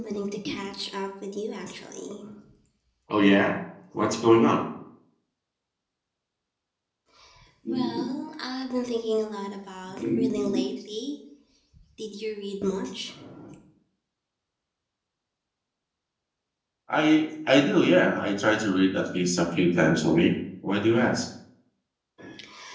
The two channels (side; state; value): both; identical; correlation 1.00